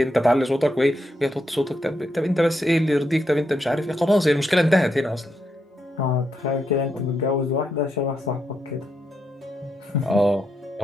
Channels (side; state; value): both; normal; correlation 0.81